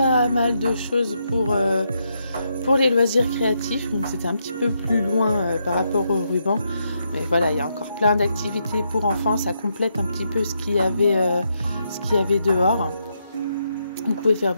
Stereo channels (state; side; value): inverted; both; correlation -0.80